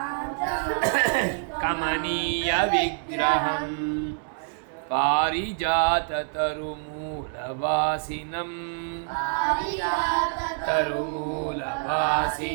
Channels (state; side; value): silent; left; digital silence